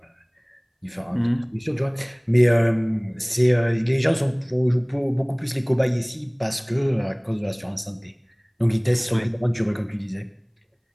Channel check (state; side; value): identical; both; correlation 1.00